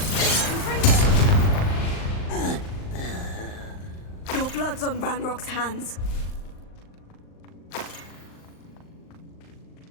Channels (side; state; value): right; late; 39 ms